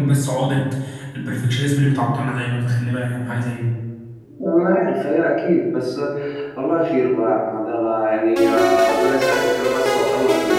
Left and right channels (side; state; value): both; identical; correlation 1.00